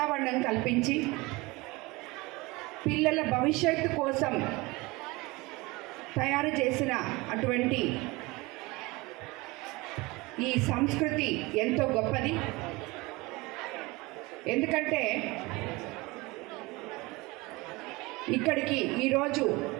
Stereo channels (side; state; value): left; quieter; 23.2 dB